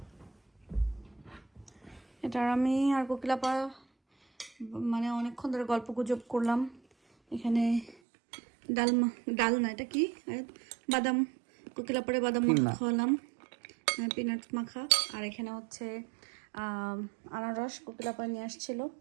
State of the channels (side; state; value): left; drops out; at 8.0 s